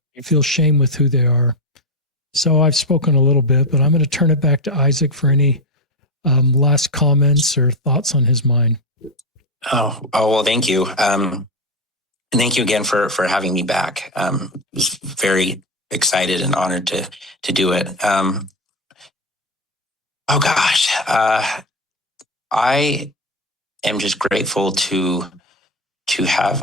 feel shame with who they are. So I've spoken a little bit, but I'm going to turn it back to Isaac for any last comments or thoughts on his mind. Oh, well, thank you. And thank you again for having me back. I was very excited and honored to do it. I am just grateful to have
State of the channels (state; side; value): normal; both; correlation 0.13